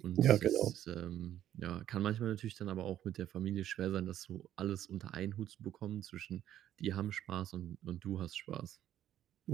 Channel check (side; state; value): left; quieter; 11.6 dB